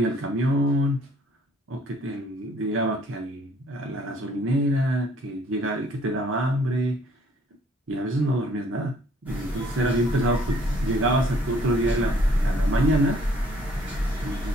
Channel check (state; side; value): normal; both; correlation 0.60